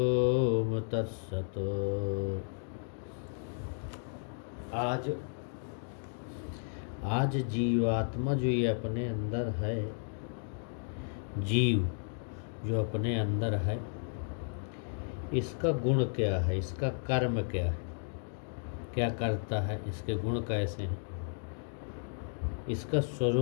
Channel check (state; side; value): silent; right; digital silence